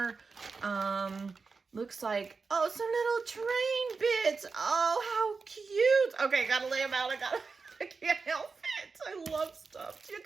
Looks like, oh, some little train bits. Oh, how cute. Okay, gotta lay them out. I can't help it. I love stuff. You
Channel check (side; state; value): left; quieter; 4.6 dB